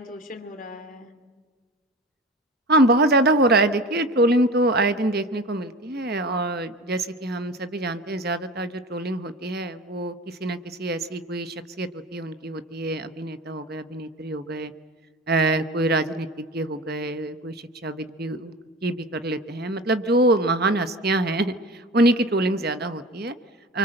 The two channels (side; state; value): both; normal; correlation 0.34